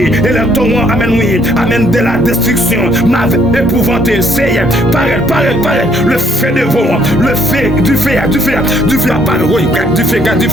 et le torrent, amen, oui, amen, de la destruction m'avait épouvanté, Seigneur, paraît, le feu de vent, le feu, du feu, apparaît, oui, garde du feu, garde, oui,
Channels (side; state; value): both; normal; correlation 0.67